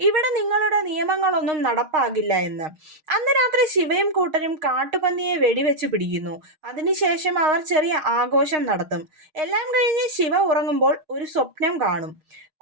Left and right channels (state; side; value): late; left; 6.4 ms